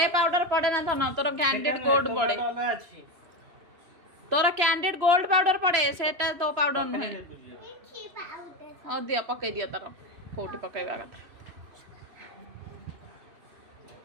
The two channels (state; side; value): late; left; 3.0 ms